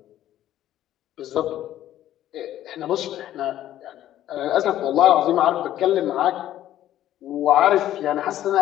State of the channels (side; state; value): right; quieter; 12.6 dB